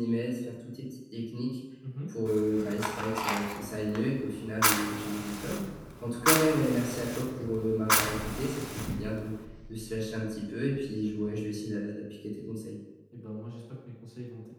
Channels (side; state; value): both; identical; correlation 1.00